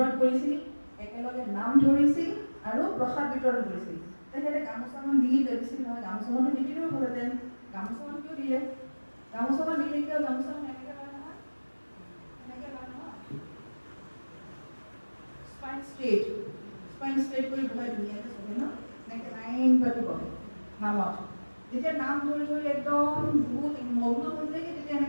কৰিছিল, একেলগে নাম ধৰিছিল আৰু প্ৰসাদ বিতৰণ কৰিছিল। তেখেতে গামোচাখন দি দিছিল নহয়, গামোচাখনো নিদিলেও হ'লহেঁতেন, গামোচাখন কিয় দিলে? গামোচাখন দিলে কিয়? গামোচাখন এনেকৈ লয় নহয়, এনেকৈ লয় নহয়, স্পাইন ষ্ট্ৰেট কৰি বহাই ধুনীয়াকৈ চবে ন, এনেকৈ লাইন পাতি বহে নামত। যেতিয়া নাম ধৰি একদম বহুত মগ্ন হৈ যায়গৈ, তেতিয়া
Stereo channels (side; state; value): both; inverted; correlation -1.00